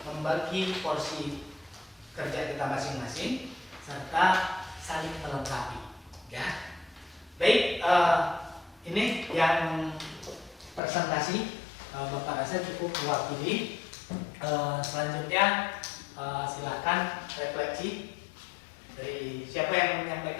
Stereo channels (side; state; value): right; drops out; at 10.8 s